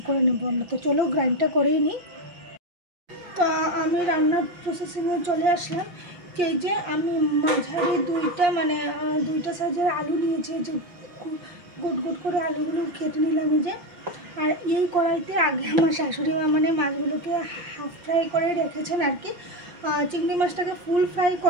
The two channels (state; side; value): late; left; 5.7 ms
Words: করে নেব আমরা। তো চলো গ্রাইন্ডটা করেই নিই। তো আমি রান্নার প্রসেসিংয়ে চলে আসলাম। এই যে আমি মাঝারি দুইটা সাইজের আলু নিয়েছি, যে গোট গোট করে আলুগুলো কেটে নিলাম এই যে। আর এই কড়াইতে আগে আমার শাশুড়ি মা মাছগুলোকে হাফ ফ্রাই করে রেখেছেন আর কি। চিংড়ি মাছটাকে ফুল ফ্রাই